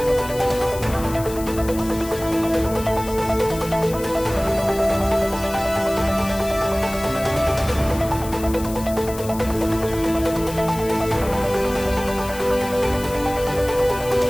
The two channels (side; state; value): left; noise; hiss, 14 dB below the sound